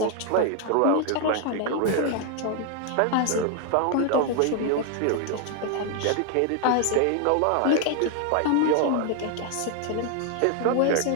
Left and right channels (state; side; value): different; both; correlation 0.00